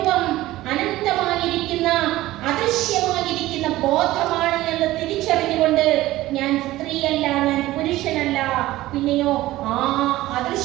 അനന്തമായിരിക്കുന്ന അദൃശ്യമായിരിക്കുന്ന ബോധമാണ് എന്ന് തിരിച്ചറിഞ്ഞുകൊണ്ട് ഞാൻ സ്ത്രീയല്ല, ഞാൻ പുരുഷനല്ല, പിന്നെയോ ആ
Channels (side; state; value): left; quieter; 16.6 dB